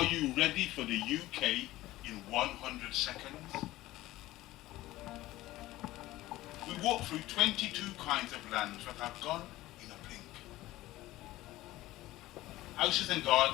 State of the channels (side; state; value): right; quieter; 16.9 dB